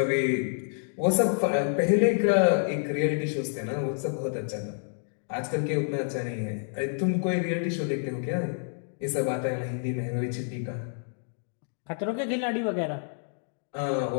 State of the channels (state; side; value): silent; right; digital silence